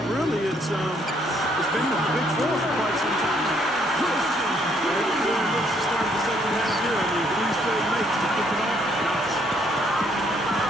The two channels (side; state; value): both; normal; correlation 0.68